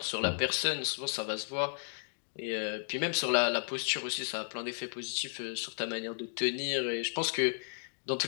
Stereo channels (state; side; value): silent; right; digital silence